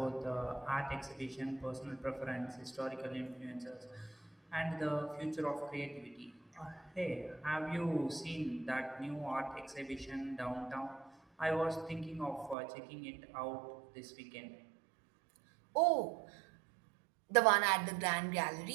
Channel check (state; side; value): drops out; left; at 12.6 s